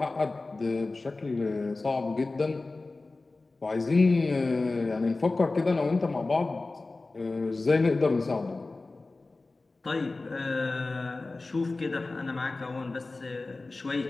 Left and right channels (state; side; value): quieter; right; 3.4 dB